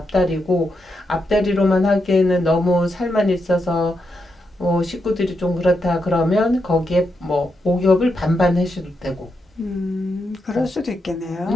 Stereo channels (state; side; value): normal; both; correlation 0.83